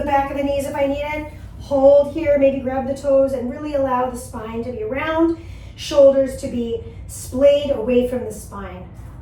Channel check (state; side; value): identical; both; correlation 1.00